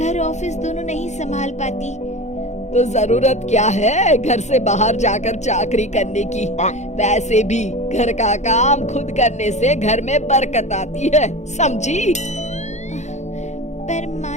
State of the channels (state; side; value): late; right; 0.33 ms